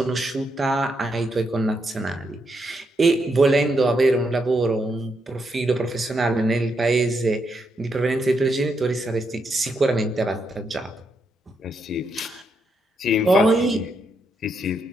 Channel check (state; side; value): normal; both; correlation 0.80